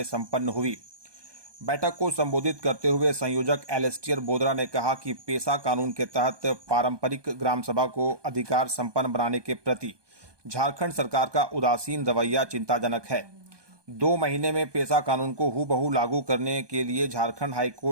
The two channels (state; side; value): late; left; 1.2 ms